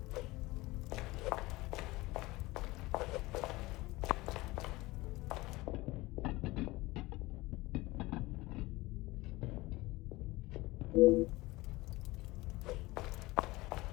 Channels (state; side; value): quieter; right; 20.5 dB